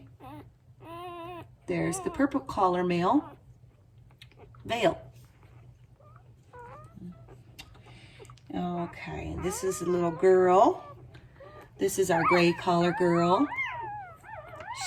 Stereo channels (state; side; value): identical; both; correlation 1.00